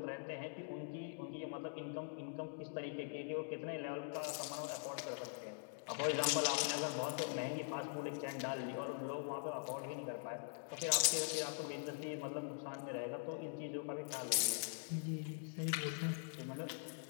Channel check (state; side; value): silent; right; digital silence